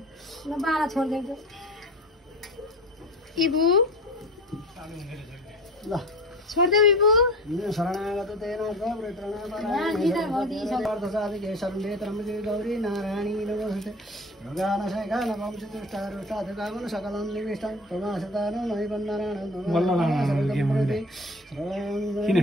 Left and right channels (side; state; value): both; normal; correlation 0.37